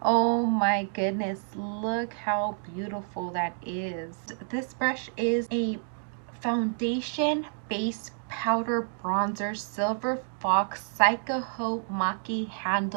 Oh my goodness, look how beautiful that is. This brush is a foundation face powder bronzer silver fox Saikoho Makie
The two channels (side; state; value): left; silent; digital silence